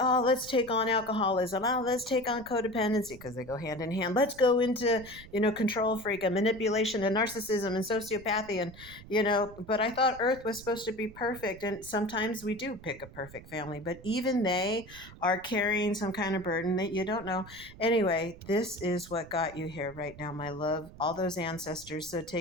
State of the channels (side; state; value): right; noise; rumble, 18 dB below the sound